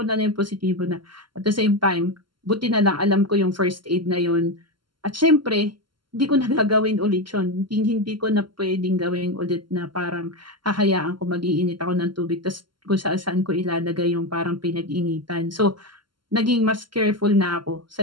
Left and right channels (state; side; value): late; left; 0.72 ms